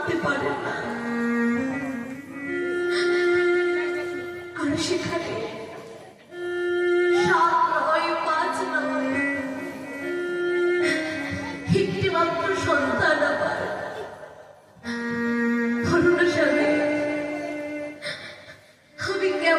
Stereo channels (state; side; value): identical; both; correlation 1.00